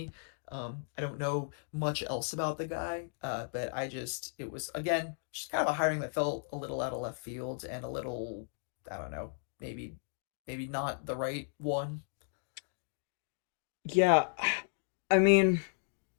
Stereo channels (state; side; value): silent; right; digital silence